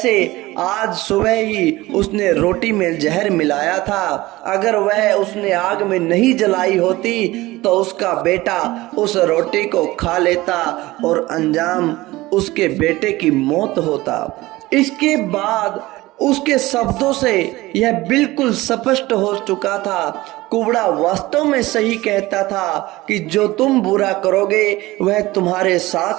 आज सुबह ही उसने रोटी में जहर मिलाया था। अगर वह उसने आग में नहीं जलाई होती तो उसका बेटा उस रोटी को खा लेता और अंजाम उसके बेटे की मौत होता। इसके बाद उसके शब्दों से यह बिल्कुल स्पष्ट हो चुका था, कुबड़ा वास्तव में सही कहता था कि जो तुम बुरा करोगे वह तुम्हारे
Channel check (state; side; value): quieter; left; 19.0 dB